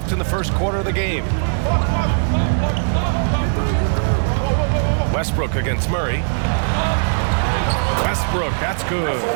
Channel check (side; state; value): left; silent; digital silence